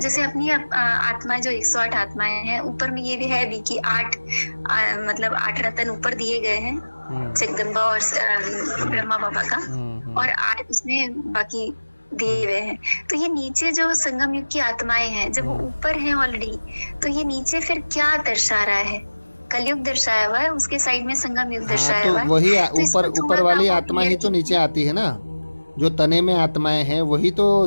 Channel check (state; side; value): inverted; both; correlation -1.00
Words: अपनी आत्मा जो 108 आत्माएं हैं, ऊपर में ये भी है भी कि 8 मतलब 8 रतन ऊपर दिए गए हैं जगदम्बा और ब्रह्मा बाबा का, और 8 उसमें बाकी दिए हुए हैं। तो ये नीचे जो संगम युग की आत्माएं हैं, जब वो ऊपर हैं ऑलरेडी, तो ये नीचे फिर क्या दर्शा रहा है? कलयुग दर्शाया हुआ है, उसके साइड में संगम युग दर्शाया हुआ है। वही तो ऊपर वाली आत्मा ही तो नीचे आती है ना। जो तने में आत्माएं हैं वही तो